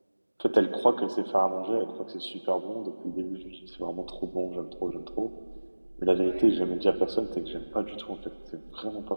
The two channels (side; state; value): both; inverted; correlation -1.00